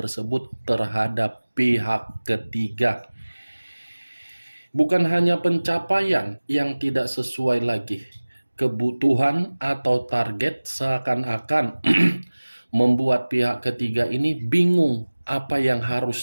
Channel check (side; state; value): both; inverted; correlation -1.00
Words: terhadap pihak ketiga. Bukan hanya pencapaian yang tidak sesuai lagi, kebutuhan atau target seakan-akan membuat pihak ketiga ini bingung apa yang